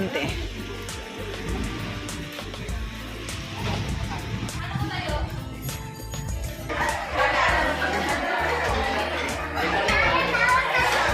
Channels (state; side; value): identical; both; correlation 1.00